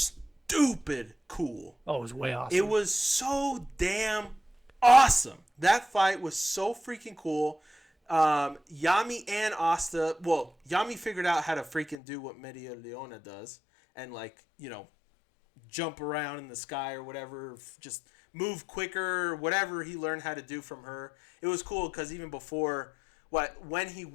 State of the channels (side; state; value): right; drops out; at 12.0 s